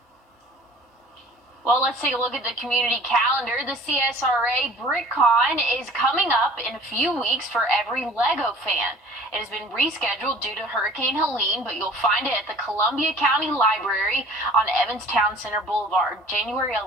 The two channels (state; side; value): normal; both; correlation 0.47